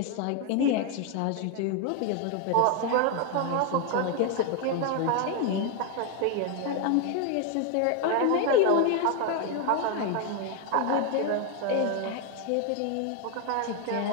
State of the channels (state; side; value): different; both; correlation 0.01